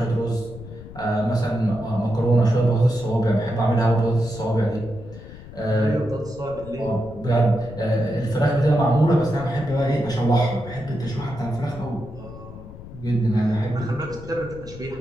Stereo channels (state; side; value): noise; left; rumble, 15 dB below the sound